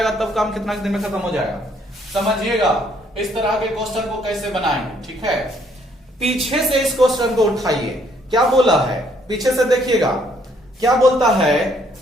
तब काम कितना दिन में खत्म हो जाएगा। समझिएगा इस तरह के क्वेश्चन को कैसे बनाएंगे, ठीक है। पीछे से इस क्वेश्चन को उठाइए, क्या बोला है पीछे से देखिएगा, क्या बोलता है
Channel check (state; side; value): normal; both; correlation 0.67